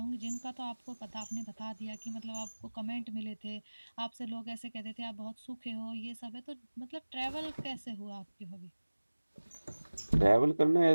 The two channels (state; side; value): inverted; both; correlation -1.00